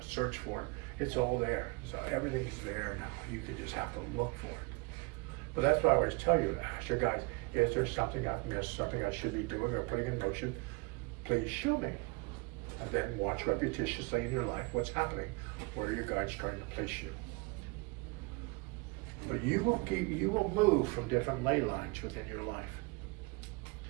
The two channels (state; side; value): quieter; left; 27.9 dB